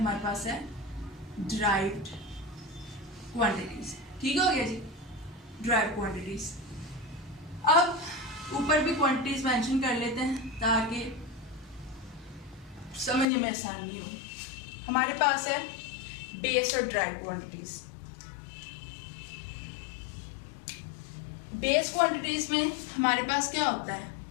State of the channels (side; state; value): right; drops out; at 13.2 s